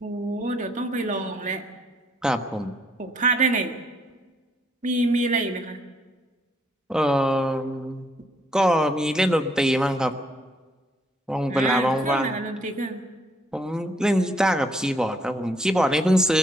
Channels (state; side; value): normal; both; correlation 0.69